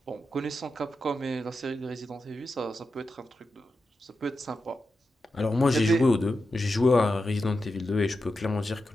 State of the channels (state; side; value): normal; both; correlation 0.89